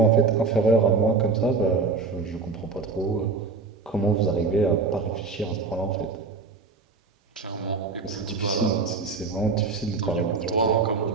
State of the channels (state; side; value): quieter; left; 4.4 dB